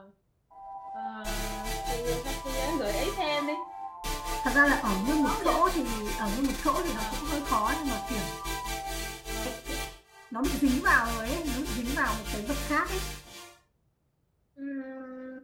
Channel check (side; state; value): both; identical; correlation 1.00